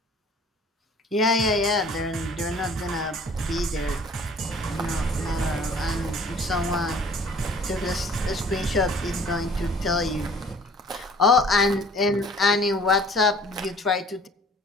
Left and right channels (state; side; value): normal; both; correlation 0.52